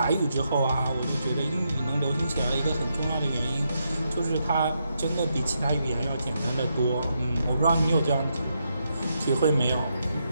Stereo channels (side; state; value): both; inverted; correlation -0.81